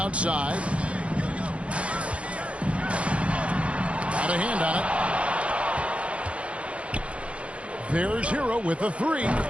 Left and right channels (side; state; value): left; late; 0.061 ms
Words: Got a hand on it. There's Hero with a three.